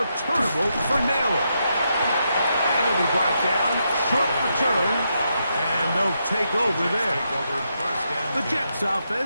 for Naylor. And he'll be brought down. Short return. And they'll take over there. The Jets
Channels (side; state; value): both; inverted; correlation -0.82